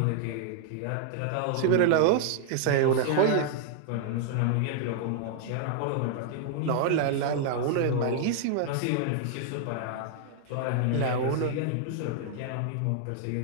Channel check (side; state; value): both; different; correlation -0.01